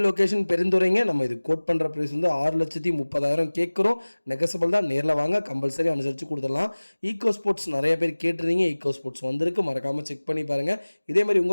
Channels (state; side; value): inverted; both; correlation -1.00